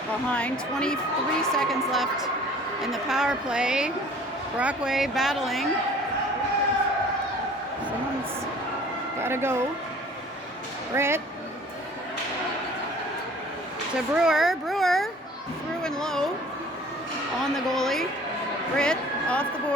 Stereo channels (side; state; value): both; normal; correlation 0.49